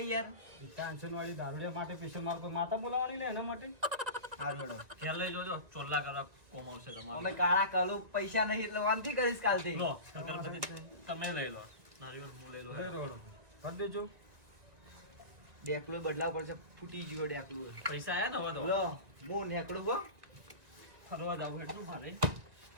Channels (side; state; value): left; late; 1.9 ms